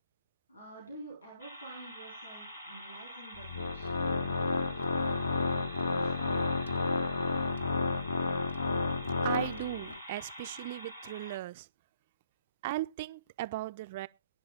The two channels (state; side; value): inverted; both; correlation -0.73